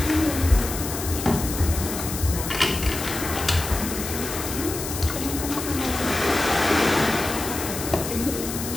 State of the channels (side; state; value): left; noise; hiss, 7 dB below the sound